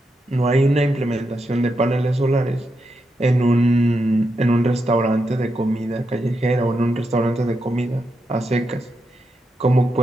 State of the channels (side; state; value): both; normal; correlation 0.85